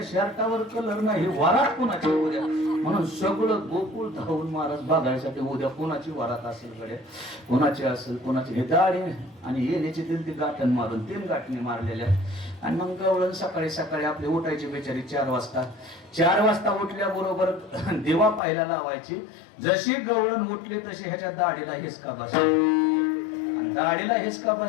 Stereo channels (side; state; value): right; drops out; at 18.4 s